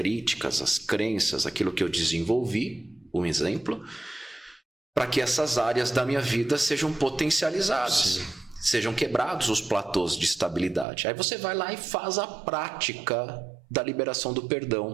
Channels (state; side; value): drops out; left; at 10.9 s